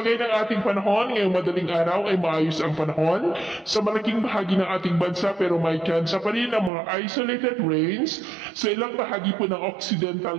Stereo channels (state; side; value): drops out; left; at 6.7 s